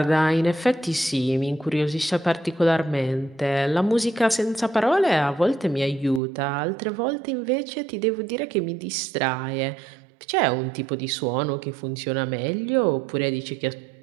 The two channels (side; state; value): left; drops out; at 6.2 s